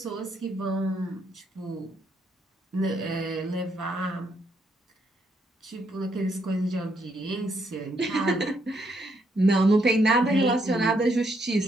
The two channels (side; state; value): both; normal; correlation 0.74